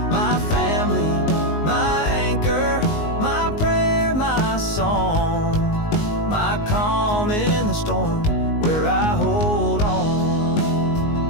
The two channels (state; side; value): late; right; 19 ms